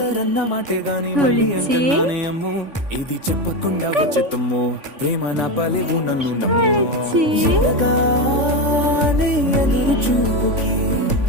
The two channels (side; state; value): left; late; 3.5 ms